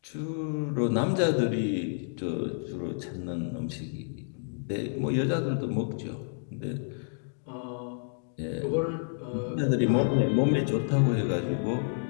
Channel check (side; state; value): right; silent; digital silence